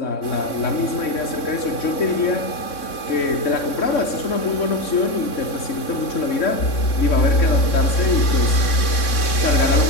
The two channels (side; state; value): right; late; 3.6 ms